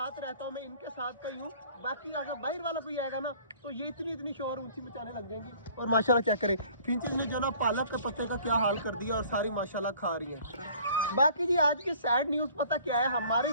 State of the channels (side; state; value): both; inverted; correlation -0.52